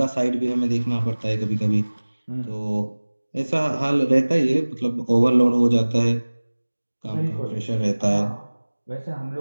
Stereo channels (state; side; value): inverted; both; correlation -1.00